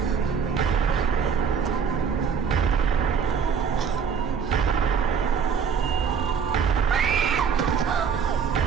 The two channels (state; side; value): quieter; left; 6.7 dB